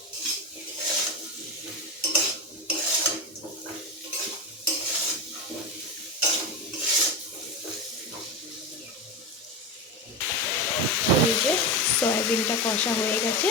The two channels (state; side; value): normal; both; correlation 0.18